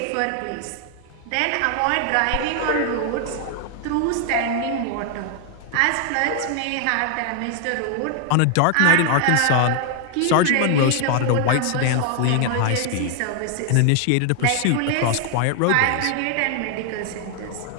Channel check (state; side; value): different; both; correlation 0.00